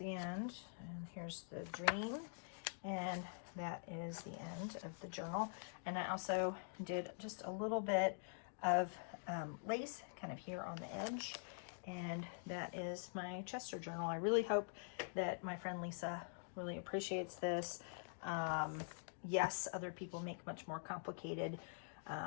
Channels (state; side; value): silent; right; digital silence